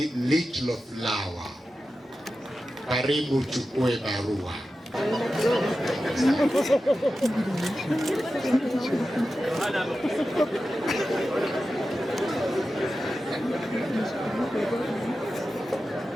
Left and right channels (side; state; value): both; normal; correlation 0.92